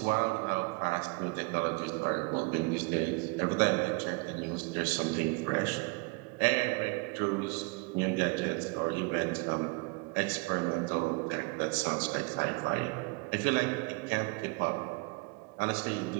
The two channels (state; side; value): quieter; left; 28.8 dB